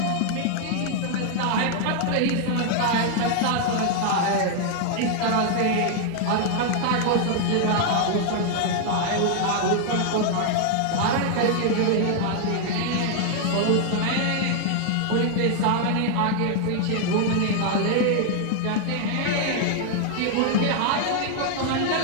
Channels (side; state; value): both; different; correlation 0.00